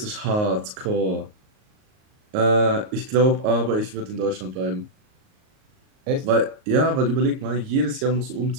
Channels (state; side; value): late; left; 38 ms